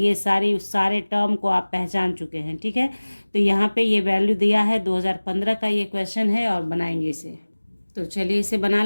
सारे टर्म को आप पहचान चुके हैं, ठीक है। तो यहाँ पे ये वैल्यू दिया है, 2015 का ये क्वेश्चन है और बनाएंगे इसे। तो चलिए इसे बना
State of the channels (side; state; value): both; inverted; correlation -1.00